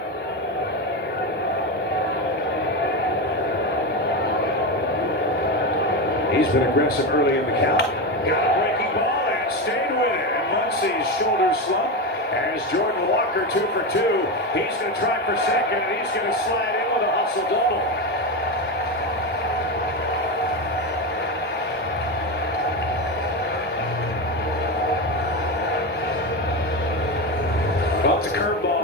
He's been aggressive early in the count. Got a breaking ball and stayed with it. And Muncie's shoulder slump as Jordan Walker 2 for 2. He's going to try for second, and he's going to slide in with a hustle double. Well, it's a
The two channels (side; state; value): both; normal; correlation 0.16